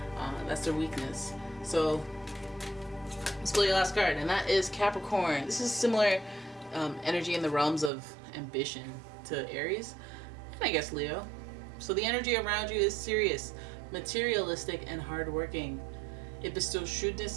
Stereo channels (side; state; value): left; drops out; at 7.9 s